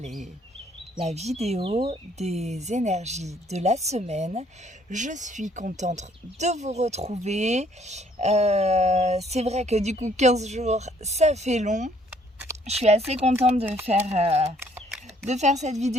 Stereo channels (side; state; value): both; normal; correlation 0.63